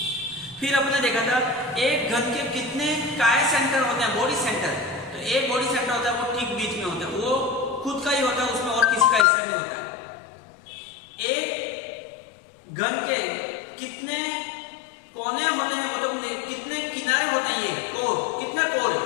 फिर आपने देखा था एक घन के कितने काय सेंटर होते हैं, बॉडी सेंटर। तो एक बॉडी सेंटर होता है वो ठीक बीच में होता है, वो खुद का ही होता है, उसमें और किसी का हिस्सा नहीं होता है। एक घन के कितने कोने होते हैं, मतलब कितने किनारे होते हैं, ये कोर, कितने कोर है,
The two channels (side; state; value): right; drops out; at 9.2 s